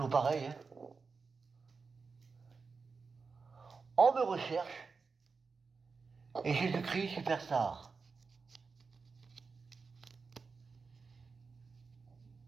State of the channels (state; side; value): quieter; left; 4.8 dB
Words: pareil, hein. On me recherche. Et Jésus-Christ, superstar.